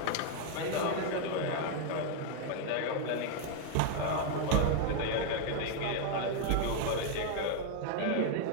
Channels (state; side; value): different; both; correlation 0.00